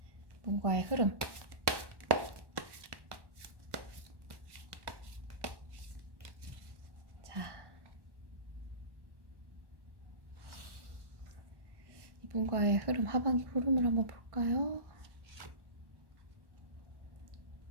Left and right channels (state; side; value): late; left; 1.1 ms